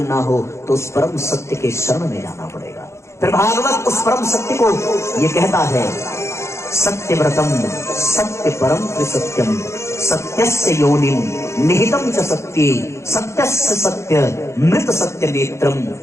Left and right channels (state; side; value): late; right; 0.13 ms